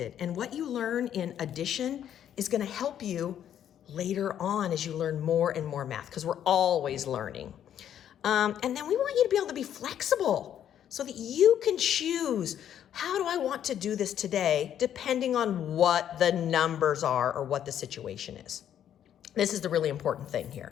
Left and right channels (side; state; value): right; quieter; 10.1 dB